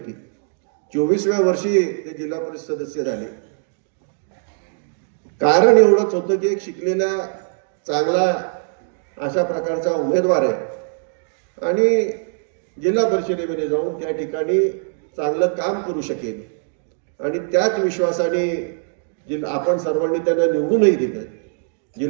24व्या वर्षी ते जिल्हा परिषद सदस्य झाले. कारण एवढंच होतं की एक शिकलेला चांगला अशा प्रकारचा उमेदवार आहे आणि जिल्हा परिषदेमध्ये जाऊन त्या ठिकाणी चांगलं काम करू शकेल आणि त्याच विश्वासाने आपण सर्वांनी त्यांना निवडूनही दिलं.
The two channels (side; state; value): left; silent; digital silence